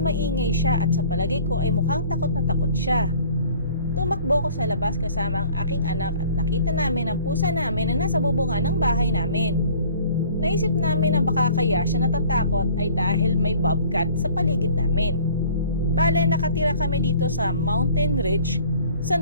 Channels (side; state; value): both; inverted; correlation -0.51